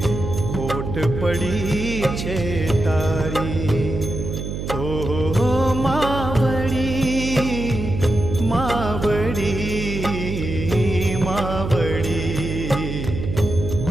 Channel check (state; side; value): noise; right; hum, 5 dB below the sound